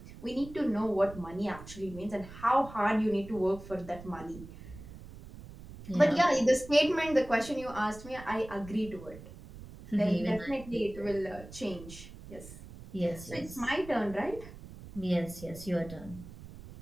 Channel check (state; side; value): noise; right; rumble, 15 dB below the sound